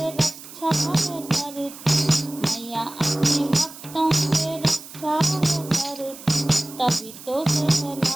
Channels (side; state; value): right; noise; hiss, 16 dB below the sound